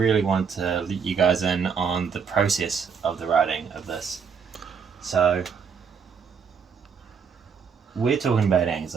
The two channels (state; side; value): quieter; left; 6.3 dB